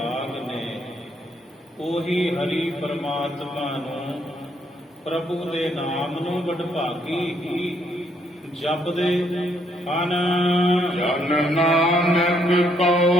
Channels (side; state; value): both; normal; correlation 0.72